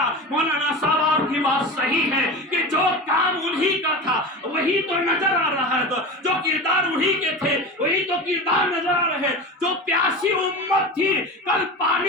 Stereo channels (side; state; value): both; normal; correlation 0.28